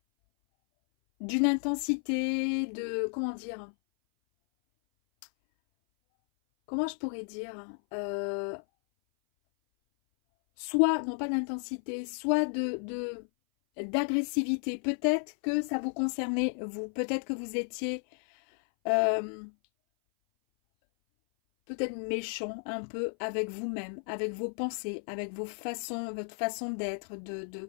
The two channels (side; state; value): right; silent; 56 dB below the other